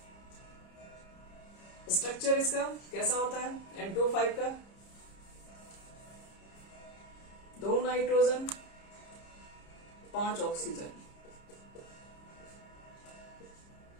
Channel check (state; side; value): late; right; 30 ms